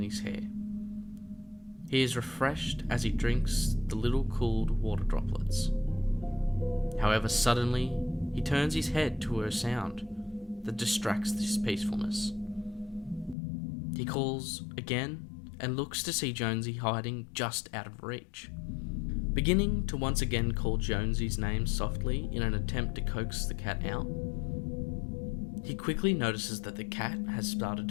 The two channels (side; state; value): right; drops out; at 13.4 s